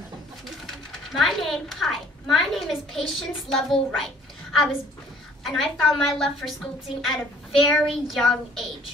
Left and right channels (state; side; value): normal; both; correlation 0.56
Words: My name is Patience Lovell Wright. I found my love for sculpting at a very young